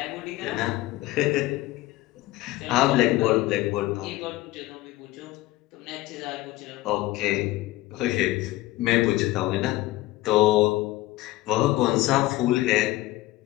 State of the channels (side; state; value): right; quieter; 17.7 dB